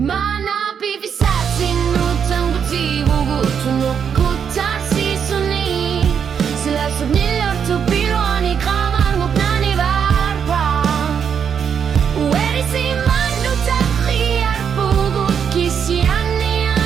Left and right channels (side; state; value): left; quieter; 7.4 dB